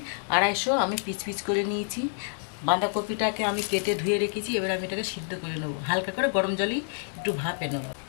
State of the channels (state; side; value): silent; right; 57 dB below the other